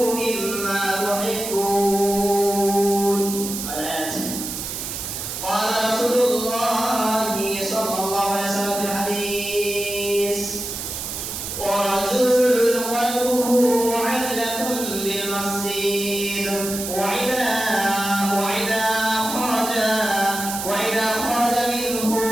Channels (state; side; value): noise; right; hiss, 6 dB below the sound